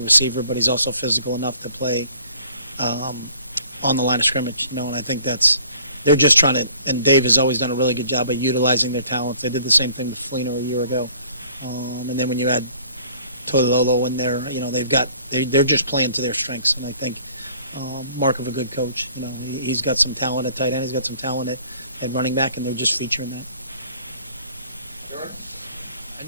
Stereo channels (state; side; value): inverted; both; correlation -0.55